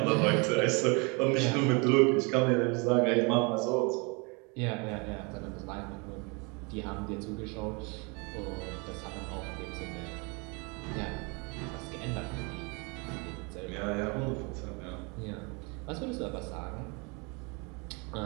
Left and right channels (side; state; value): left; quieter; 30.8 dB